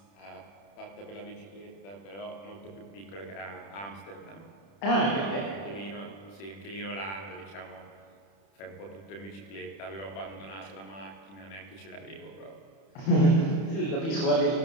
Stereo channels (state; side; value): late; right; 31 ms